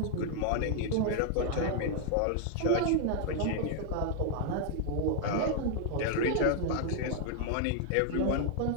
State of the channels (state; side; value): different; both; correlation 0.00